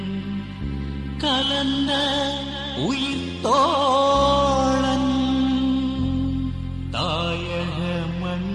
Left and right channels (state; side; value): identical; both; correlation 1.00